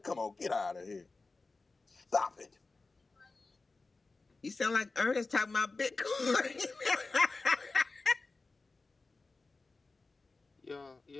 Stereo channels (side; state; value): right; quieter; 3.7 dB